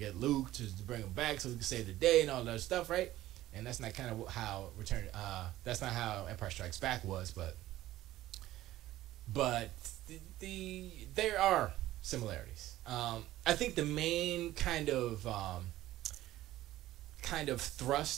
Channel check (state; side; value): quieter; left; 15.0 dB